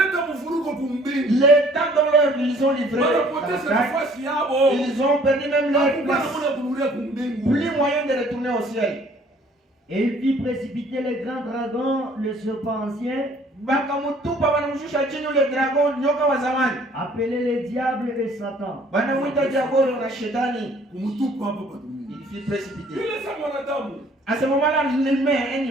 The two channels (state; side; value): normal; both; correlation 0.57